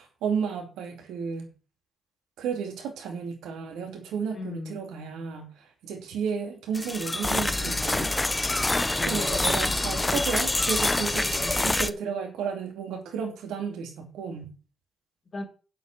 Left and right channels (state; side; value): normal; both; correlation 0.85